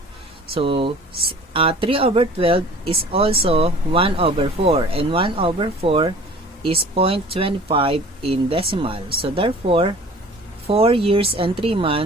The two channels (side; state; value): both; normal; correlation 0.47